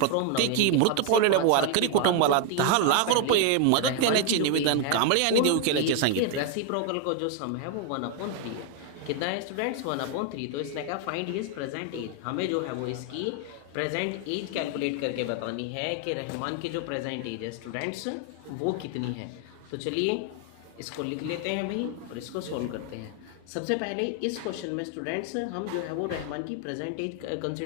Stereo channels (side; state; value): both; different; correlation 0.00